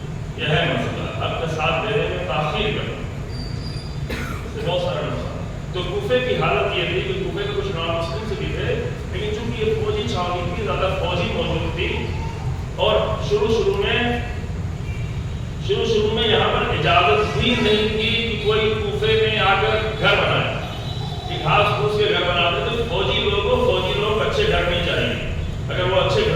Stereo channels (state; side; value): identical; both; correlation 1.00